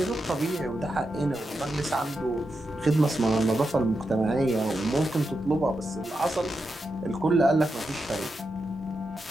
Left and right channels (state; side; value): normal; both; correlation 0.87